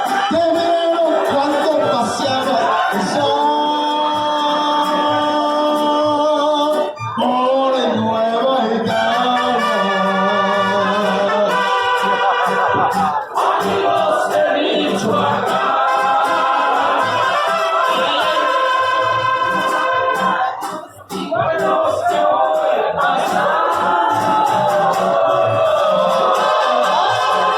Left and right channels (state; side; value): identical; both; correlation 1.00